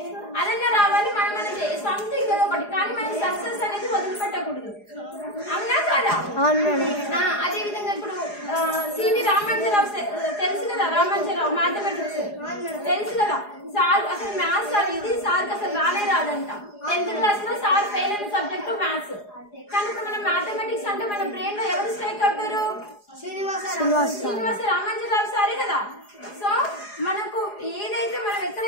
అదన్నా రావాలి. మనం సంథింగ్ ఏదో ఒకటి, కానీ మనకి సక్సెస్ అనేది వదిలిపెట్టకూడదు. అవునా కదా? అదే విధంగా ఇప్పుడు సివి రామాంజరావు తెలుసు కదా. రామాంజరావు మ్యాథమెటిక్స్ తెలుసు కదా. సార్ అసలు మ్యాథ్స్ అనేది సార్కి అసలు రానే రాదంట. 10th క్లాస్ లో సార్ ఫెయిల్ అయిన సబ్జెక్టు మ్యాథ్స్. కానీ ఇప్పుడు మన మ్యాథమెటిక్స్ అంటే మన బ్రెయిన్ లో ఎవరు స్ట్రైక్ అవుతారు? శ్రీనివాస రామాంజరావు సారే కదా. సో మనకు ఏదైతే మనం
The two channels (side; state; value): right; late; 4.8 ms